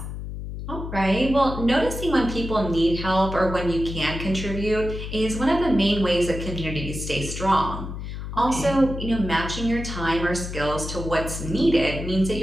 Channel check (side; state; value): left; noise; hum, 7 dB below the sound